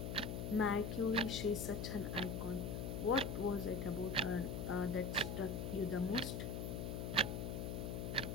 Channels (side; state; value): left; noise; hum, 3 dB below the sound